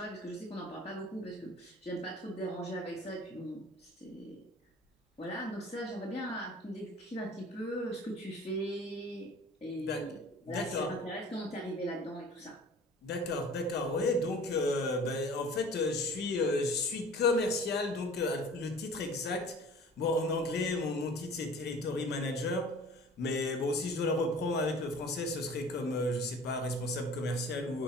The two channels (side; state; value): both; normal; correlation 0.45